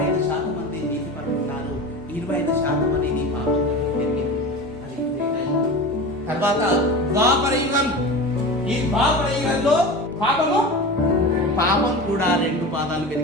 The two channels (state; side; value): normal; both; correlation 0.30